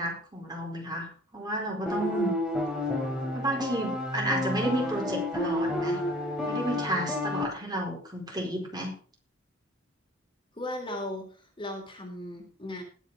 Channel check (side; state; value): both; normal; correlation 0.50